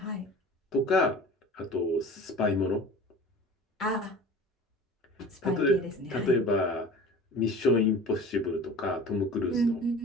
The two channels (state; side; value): normal; both; correlation 0.40